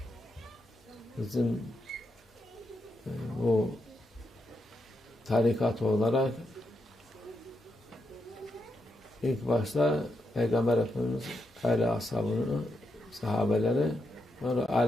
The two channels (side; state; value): both; normal; correlation 0.83